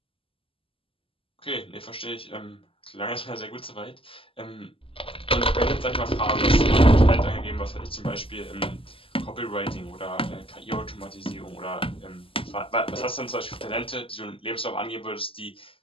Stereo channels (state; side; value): late; right; 0.26 ms